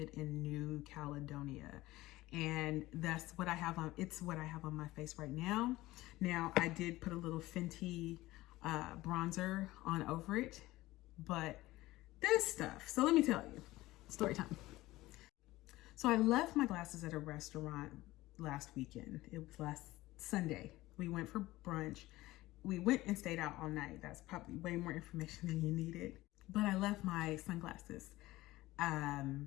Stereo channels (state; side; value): quieter; right; 17.9 dB